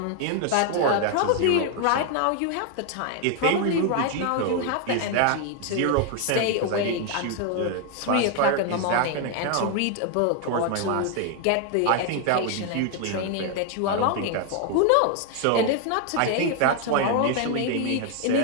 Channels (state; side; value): different; both; correlation 0.01